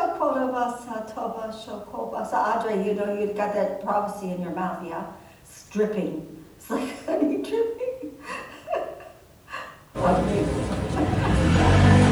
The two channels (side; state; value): both; identical; correlation 1.00